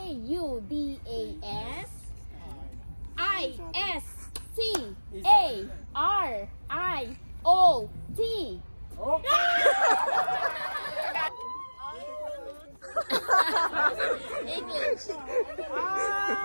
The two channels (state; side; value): inverted; both; correlation -1.00